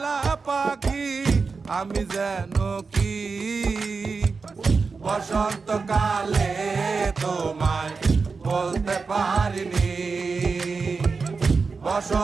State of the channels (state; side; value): quieter; left; 4.6 dB